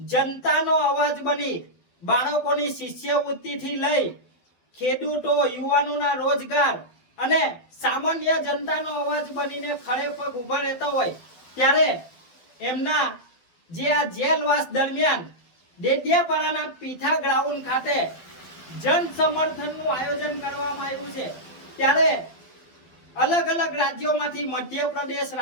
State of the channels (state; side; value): late; right; 12 ms